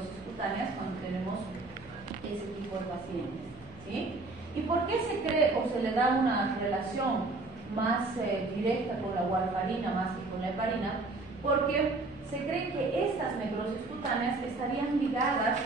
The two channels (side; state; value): left; quieter; 3.4 dB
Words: cutáneas cuando tenemos ese tipo de pacientes, ¿sí? ¿Y por qué se cree o se le da una relación más directa con la warfarina más que con la heparina? Porque se cree que estas necrosis cutáneas estarían ligadas